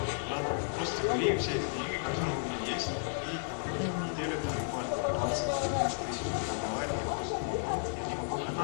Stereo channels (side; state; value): right; silent; digital silence